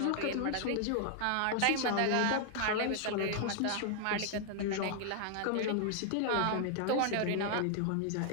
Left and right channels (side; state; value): both; different; correlation 0.00